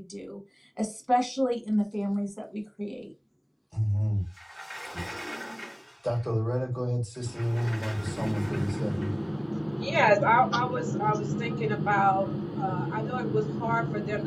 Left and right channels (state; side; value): identical; both; correlation 1.00